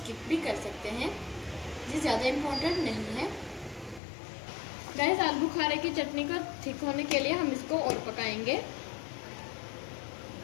भी कर सकते हैं, ये ज़्यादा इम्पोर्टेंट नहीं है। गाइस आलू बुखारे की चटनी को थिक होने के लिए हम इसको और पकाएंगे।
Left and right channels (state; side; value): drops out; right; at 4.0 s